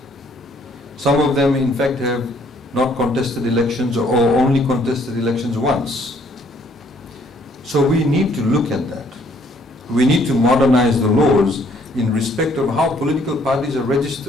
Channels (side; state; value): both; normal; correlation 0.64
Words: Some of them, in fact, have not contested elections or only contested elections once. So we need to look at that. We need to modernize the laws in respect of how political parties are